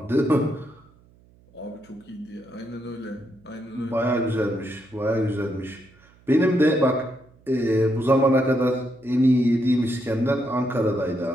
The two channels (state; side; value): noise; right; hum, 29 dB below the sound